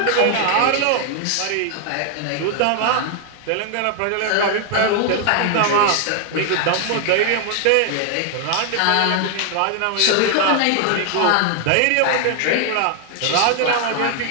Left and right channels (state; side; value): different; both; correlation 0.00